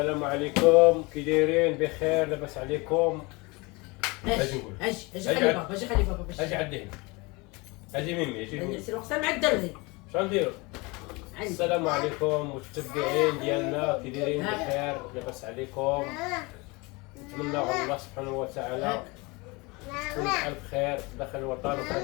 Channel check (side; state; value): right; quieter; 25.9 dB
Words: عليكم، كي دايرين؟ بخير؟ لاباس عليكم؟ اجي نقول اجي خلي بابا اجي عندي هنا، اجي ميمي اجي نقول سير وقتها مع الدري. شنو نديرو؟ السلام عليكم متتبعين ديالنا، كي دايرين؟ بخير؟ لاباس عليكم؟ نتمنى الله سبحانه وتعالى تكون بألف خير داخل الوطن